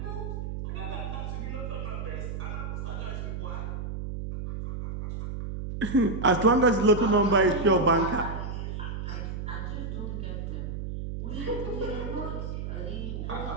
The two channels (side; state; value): right; noise; hum, 5 dB below the sound